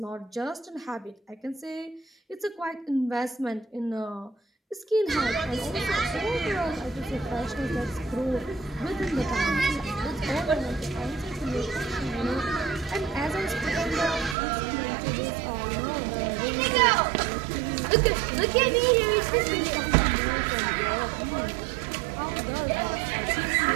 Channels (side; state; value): left; drops out; at 14.4 s